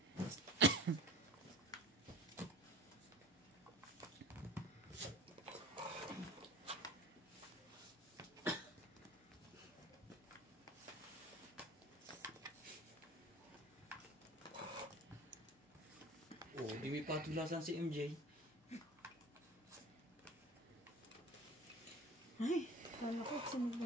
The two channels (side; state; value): both; normal; correlation 0.41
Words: Oh, di may patulasan si MJ. Ay, kala ko sunog